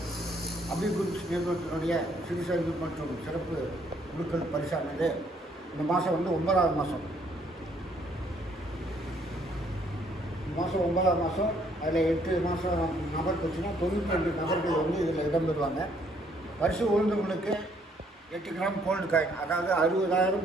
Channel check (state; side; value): normal; both; correlation 0.67